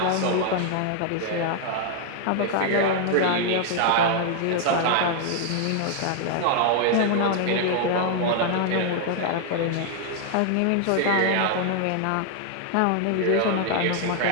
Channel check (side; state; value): both; different; correlation 0.00